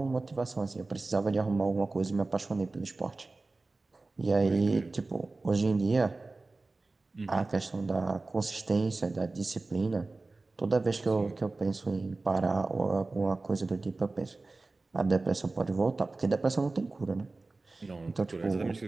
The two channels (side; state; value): left; quieter; 3.4 dB